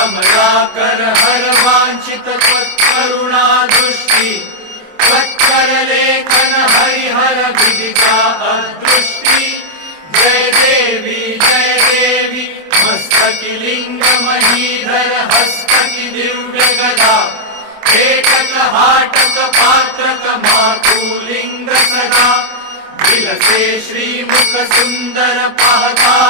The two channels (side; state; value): left; late; 28 ms